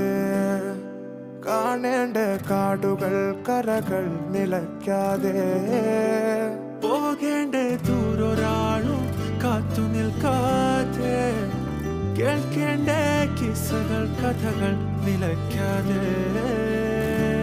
കാണേണ്ട കാടുകൾ കരകൾ നിലയ്ക്കാതെ പോകേണ്ട ദൂരൊരാളും കാത്തു നിൽക്കാതെ കേൾക്കേണ്ട കിസ്സകൾ കഥകൾ നിലയ്ക്കാതെ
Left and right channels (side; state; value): both; identical; correlation 1.00